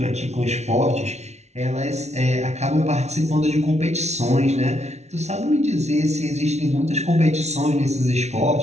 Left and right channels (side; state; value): left; late; 0.32 ms